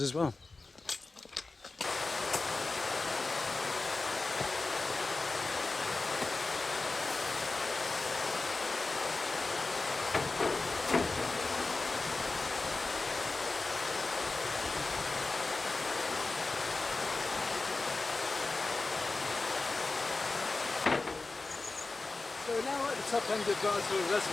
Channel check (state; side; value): quieter; right; 3.5 dB